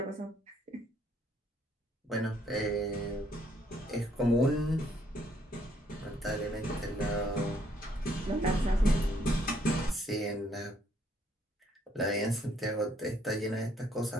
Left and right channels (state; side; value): normal; both; correlation 0.68